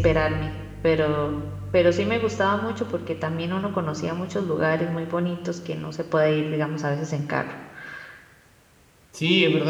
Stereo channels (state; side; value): identical; both; correlation 1.00